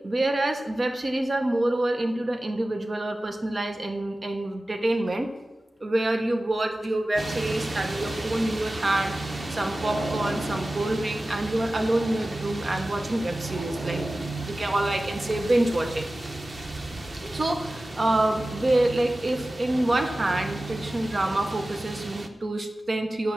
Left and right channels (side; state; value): both; normal; correlation 0.96